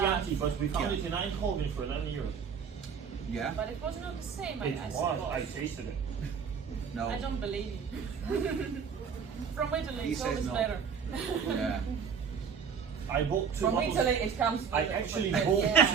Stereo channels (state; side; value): quieter; left; 6.5 dB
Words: but we found Yeah. it in Eindhoven for €11. Yeah? But it was not the same. It I was. suppose. I tasted it. No. I don't believe you. From Italy, He it's says always no. better. Yeah. I bought two From bottles. Italy, it comes. With I a- actually with- bought yeah.